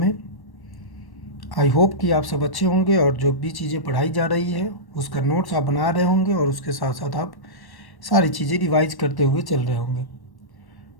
आई होप कि आप सब अच्छे होंगे और जो भी चीज़ें पढ़ाई जा रही है उसका नोट्स आप बना रहे होंगे और उसके साथ साथ आप सारी चीज़ें रिवाइज करते हुए चल रहे होंगे।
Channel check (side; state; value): right; late; 1.1 ms